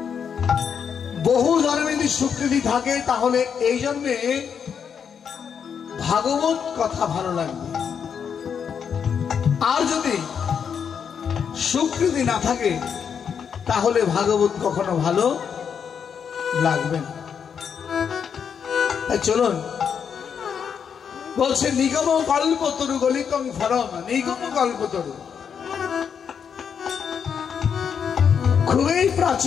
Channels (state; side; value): quieter; right; 7.2 dB